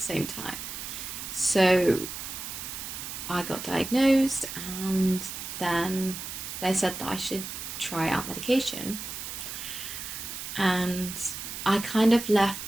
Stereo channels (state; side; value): noise; right; hiss, 8 dB below the sound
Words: time. So I got diagnosed and then they said that I should try out medication. And I kind of left